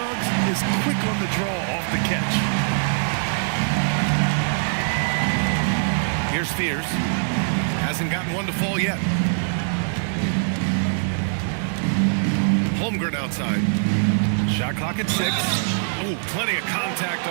is quick on the draw off the catch. Here's Fears. Hasn't gotten one to fall yet. Holmgren outside. Shot clock at 6. Oh, plenty of contact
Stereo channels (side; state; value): left; silent; digital silence